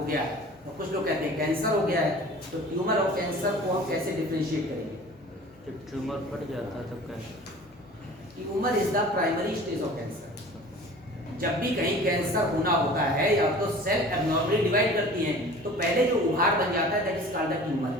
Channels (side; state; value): both; normal; correlation 0.43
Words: गया है, तो कुछ लोग कहते हैं कैंसर हो गया है। तो ट्यूमर और कैंसर को हम कैसे डिफरेंशिएट करेंगे? जब ट्यूमर फट जाता है तब cancer. Tumour is the primary stage of cancer. जब भी कहीं कैंसर होना होता है, या तो सेल एब्नॉर्मली डिवाइड करती हैं, तो पहले जो उभार बन जाता है that is called the tumour,